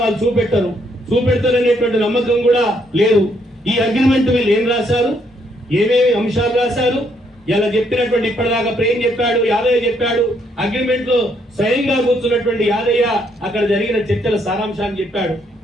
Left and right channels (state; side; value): normal; both; correlation 0.72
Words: వాళ్ళు చూపెడతారనేటువంటి నమ్మకం కూడా లేదు. ఈ అగ్రిమెంట్ వీళ్ళు ఏం రాశారు, ఏమేమి అంశాలు రాశారు, ఇలా చెప్పినటువంటి ఇప్పటిదాకా ప్రేమ్ చెప్పాడు, యాదయ్య చెప్పాడు. అగ్రిమెంట్ లో స్వయంగా కూర్చున్నటువంటి యాదయ్య అక్కడ జరిగిన చర్చల సారాంశాన్ని చెప్పాడు.